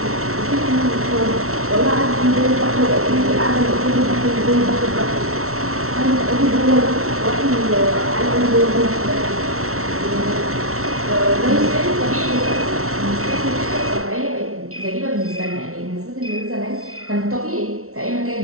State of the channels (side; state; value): left; late; 0.63 ms